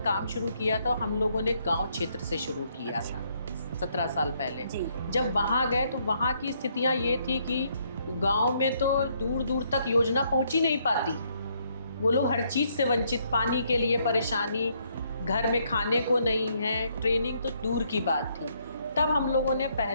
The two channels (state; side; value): inverted; both; correlation -0.71